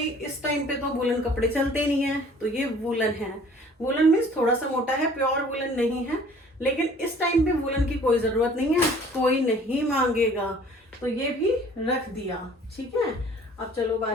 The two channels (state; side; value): normal; both; correlation 0.52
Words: इस टाइम पे तो वूलन कपड़े चलते नहीं है, तो ये वूलन है। वूलन मीन्स थोड़ा सा मोटा है, प्योर वूलन नहीं है, लेकिन इस टाइम पे वूलन की कोई जरूरत नहीं है, कोई नहीं मांगेगा, तो ये भी रख दिया, ठीक है। अब चलो